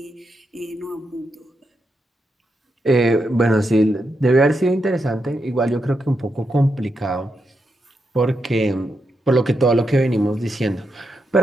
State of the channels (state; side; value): normal; both; correlation 0.84